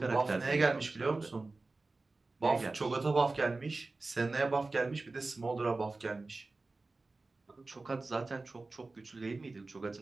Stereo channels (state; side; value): quieter; left; 3.4 dB